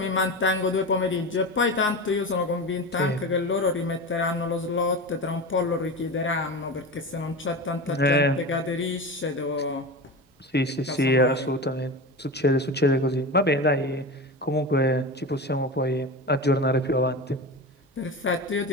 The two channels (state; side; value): normal; both; correlation 0.26